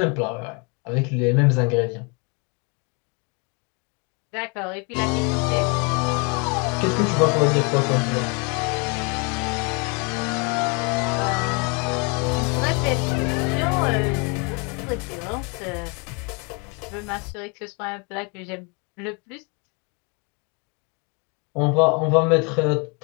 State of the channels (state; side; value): quieter; right; 33.0 dB